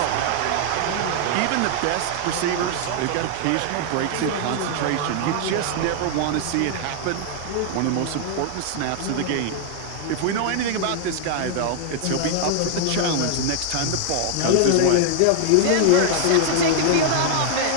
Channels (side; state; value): both; different; correlation 0.00